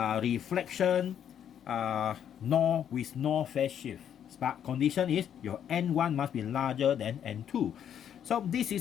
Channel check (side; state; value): right; quieter; 9.2 dB